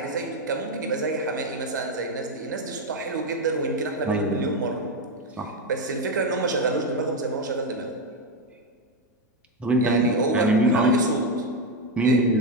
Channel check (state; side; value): normal; both; correlation 0.08